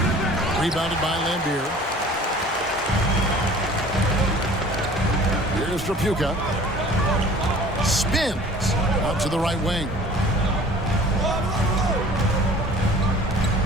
Rebounded by Lambier. Here's Trapuka. Spins out to the right wing.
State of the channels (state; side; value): normal; both; correlation 0.47